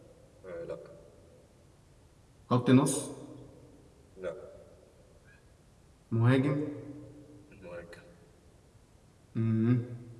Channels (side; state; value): both; identical; correlation 1.00